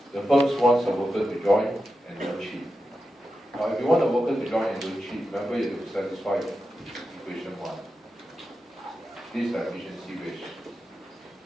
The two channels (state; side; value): normal; both; correlation 0.90